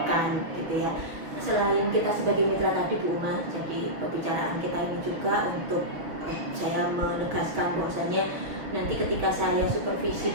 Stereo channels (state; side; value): late; left; 5.9 ms